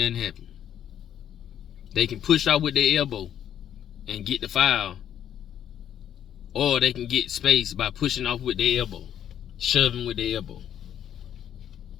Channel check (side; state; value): right; quieter; 10.0 dB